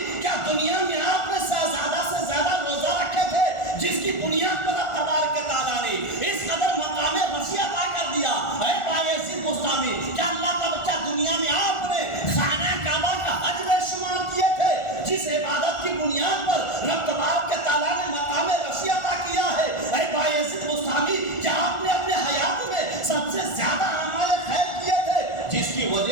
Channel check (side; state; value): right; late; 1.4 ms